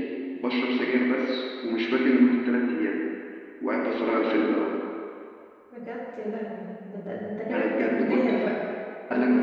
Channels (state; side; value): identical; both; correlation 1.00